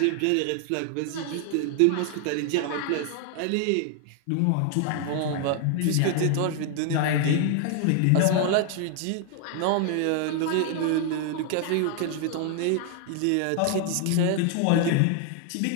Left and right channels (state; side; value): different; both; correlation 0.00